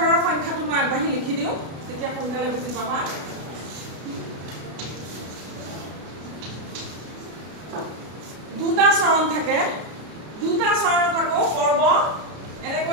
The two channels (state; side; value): late; left; 33 ms